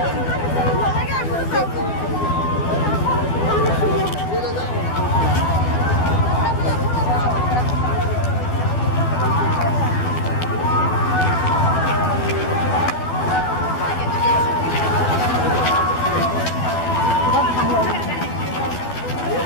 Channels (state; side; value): late; right; 12 ms